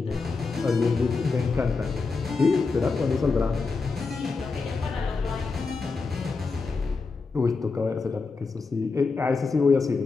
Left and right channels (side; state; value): right; quieter; 4.3 dB